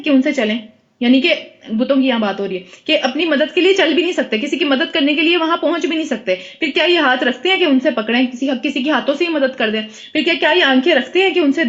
کہ ان سے چلیں؟ یعنی کہ بتوں کی یہاں بات ہو رہی ہے کہ اپنی مدد کے لیے چل بھی نہیں سکتے، کسی کی مدد کرنے کے لیے وہاں پہنچ بھی نہیں سکتے، پھر کیا یہ ہاتھ رکھتے ہیں کہ ان سے پکڑیں، کسی کے ہاتھوں سے ہی مدد کر دیں؟ پھر کیا یہ آنکھیں رکھتے ہیں کہ ان سے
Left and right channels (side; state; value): both; identical; correlation 1.00